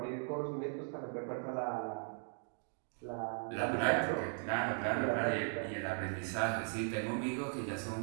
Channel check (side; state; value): left; silent; 52 dB below the other